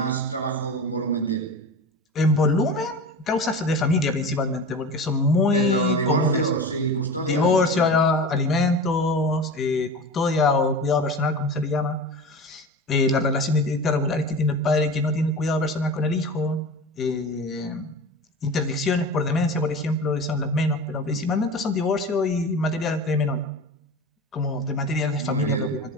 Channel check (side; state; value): both; normal; correlation 0.32